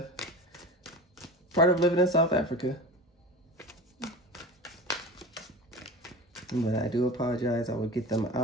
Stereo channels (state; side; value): normal; both; correlation 0.31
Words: living in South Africa. But I do apologize. I will get them